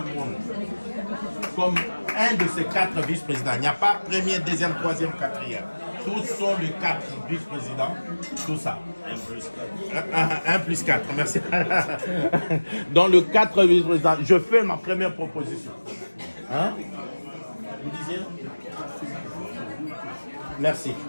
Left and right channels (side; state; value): both; inverted; correlation -1.00